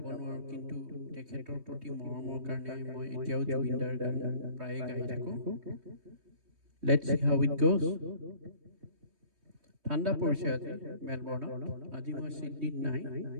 নোৱাৰোঁ, কিন্তু তেখেতৰ প্ৰতি মৰমৰ কাৰণে মই এতিয়াও জুবিনদাৰ গান প্ৰায়ে গাই থাকোঁ। Let's C how it goes. ঠাণ্ডা পৰিছে আজি মেলবৰ্ণত। আজি মই ছিডনীত নাই,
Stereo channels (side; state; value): left; late; 3.2 ms